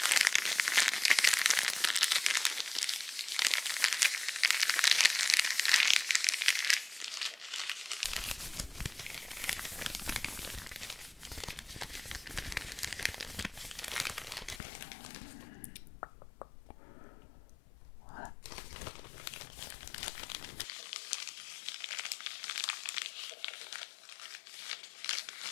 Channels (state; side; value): drops out; right; at 14.6 s